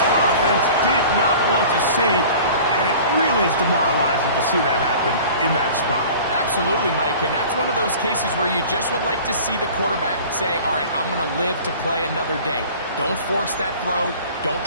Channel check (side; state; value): both; inverted; correlation -0.43